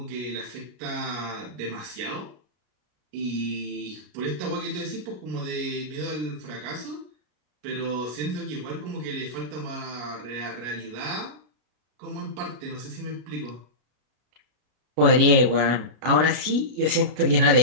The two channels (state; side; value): late; left; 33 ms